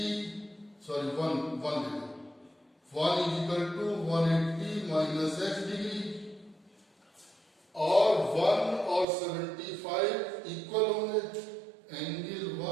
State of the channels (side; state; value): left; drops out; at 9.1 s